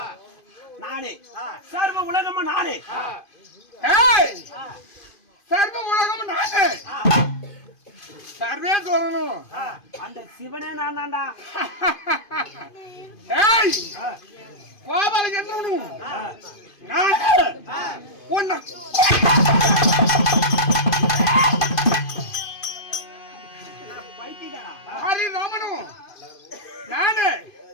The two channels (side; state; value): right; late; 2.5 ms